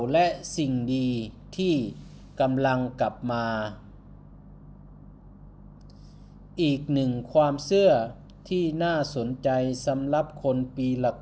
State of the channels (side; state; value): both; identical; correlation 1.00